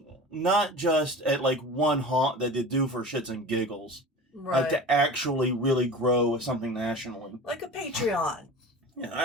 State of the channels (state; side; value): normal; both; correlation 0.36